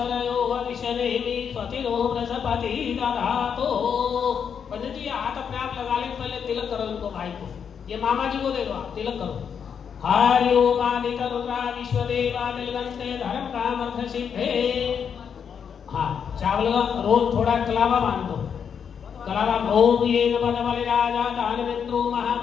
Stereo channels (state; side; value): quieter; right; 7.3 dB